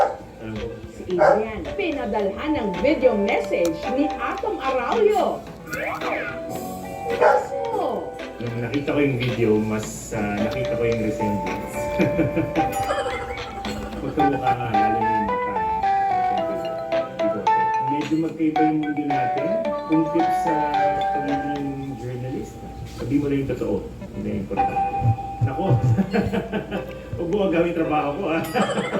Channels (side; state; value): both; identical; correlation 1.00